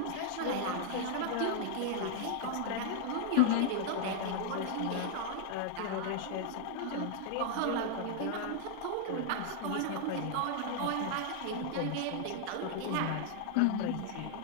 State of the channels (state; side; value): different; both; correlation 0.00